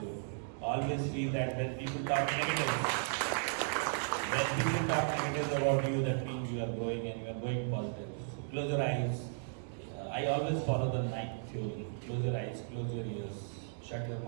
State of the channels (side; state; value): left; silent; digital silence